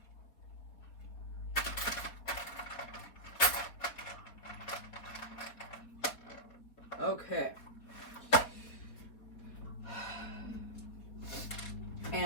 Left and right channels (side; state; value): right; late; 4.2 ms